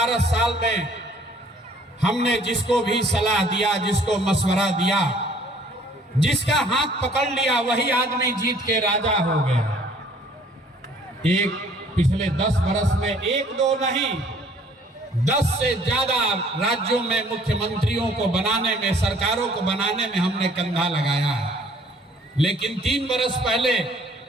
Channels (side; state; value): both; normal; correlation 0.57